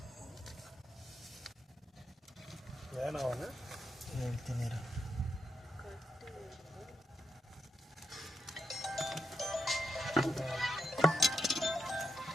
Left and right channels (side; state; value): both; normal; correlation 0.83